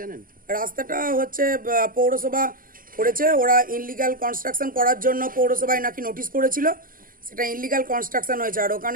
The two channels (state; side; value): late; left; 0.41 ms